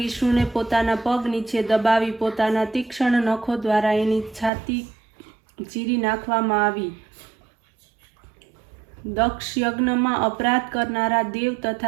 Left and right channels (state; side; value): drops out; left; at 4.5 s